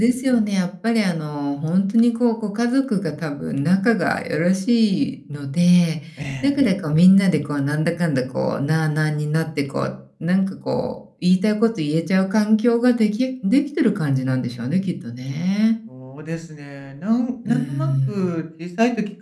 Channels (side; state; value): both; identical; correlation 1.00